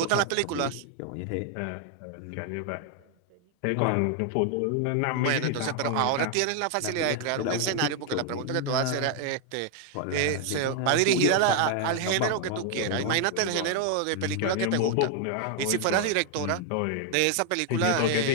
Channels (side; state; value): both; different; correlation 0.00